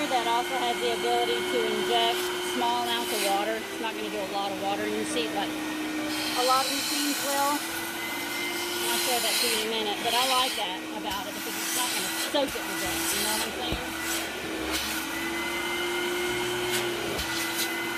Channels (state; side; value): identical; both; correlation 1.00